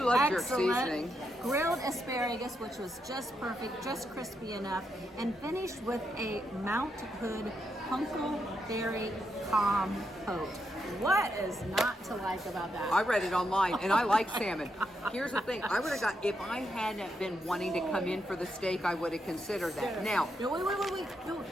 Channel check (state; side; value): normal; both; correlation 0.82